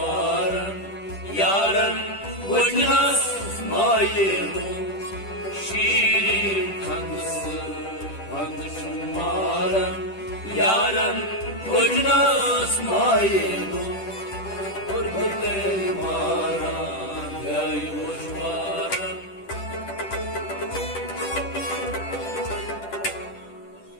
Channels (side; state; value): right; late; 10 ms